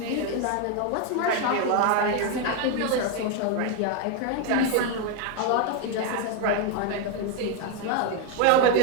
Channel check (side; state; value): both; different; correlation 0.01